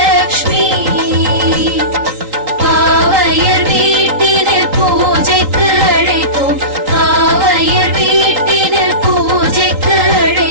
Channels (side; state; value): left; late; 3.8 ms